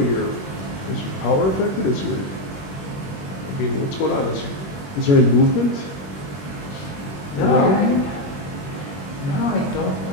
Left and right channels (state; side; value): late; right; 21 ms